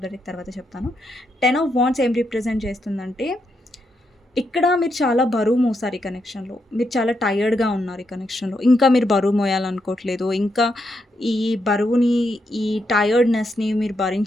ద డెక్ తర్వాత చెప్తాను. 10 ఆఫ్ వాండ్స్ ఏం రిప్రజెంట్ చేస్తుందంటే ఇక్కడ మీరు చాలా బరువు మోసారు ఈ కనెక్షన్‌లో. మీరు చాలా టైర్డ్‌గా ఉన్నారు ఈ కనెక్షన్‌లో. ఇంకా మీరు బరువు మోయాలనుకోవట్లేదు. ఇంకా ఈ బరువుని, ఈ టైర్డ్‌నెస్‌ని మీరు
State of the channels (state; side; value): normal; both; correlation 0.81